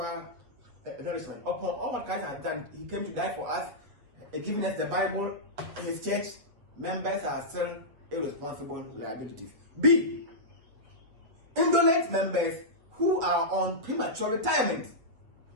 nourishment. Upon all what Christ has done, He came to die for us, giving us the Bible, His church. Members are still irresponsible liabilities. B. Indolent members who are on premature retirement.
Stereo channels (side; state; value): left; late; 8.1 ms